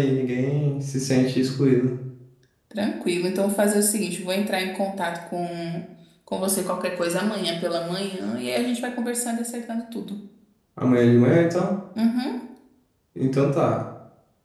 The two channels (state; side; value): identical; both; correlation 1.00